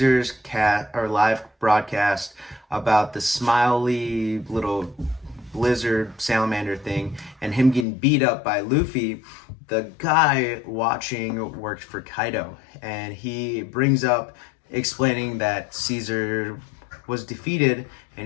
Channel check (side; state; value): right; drops out; at 7.9 s